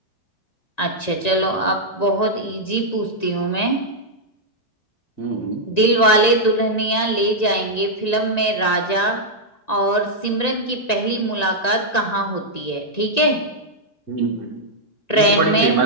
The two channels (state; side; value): late; right; 1.9 ms